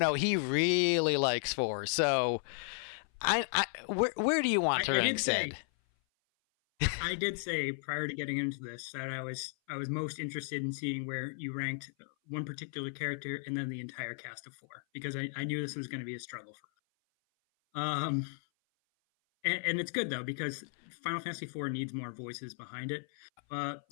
he really likes 4. So, where do you want to rank Sid? I did say prior to getting into this that I was most interested in seeing where you ranked one particular character and then the entire cast of 4 because I knew this was going to be a struggle for. And it's good though because Final Fantasy IV needs more voices behind it.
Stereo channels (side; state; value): right; silent; 55 dB below the other